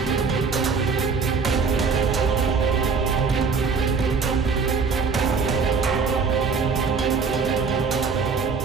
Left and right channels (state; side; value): quieter; left; 5.1 dB